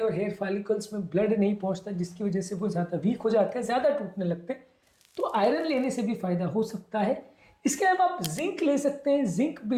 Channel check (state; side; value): identical; both; correlation 1.00